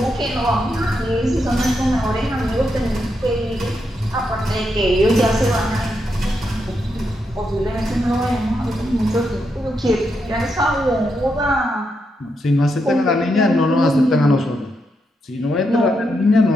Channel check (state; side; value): normal; both; correlation 0.82